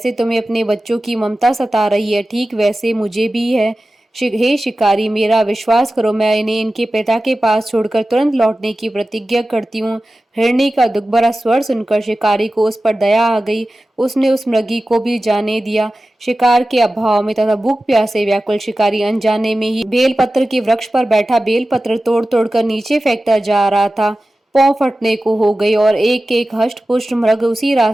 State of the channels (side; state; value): both; normal; correlation 0.95